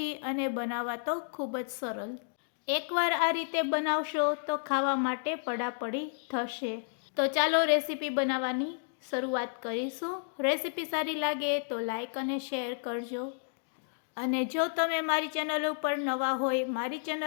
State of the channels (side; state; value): right; silent; digital silence